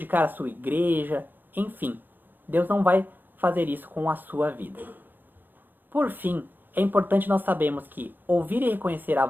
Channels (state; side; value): late; left; 0.091 ms